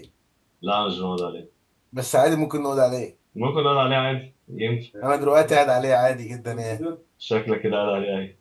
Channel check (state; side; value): identical; both; correlation 1.00